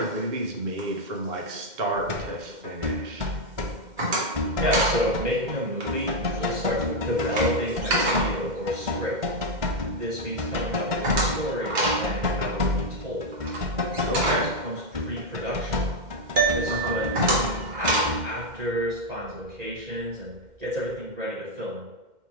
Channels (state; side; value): late; left; 2.1 ms